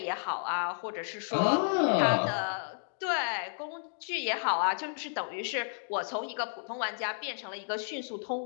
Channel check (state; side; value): silent; right; digital silence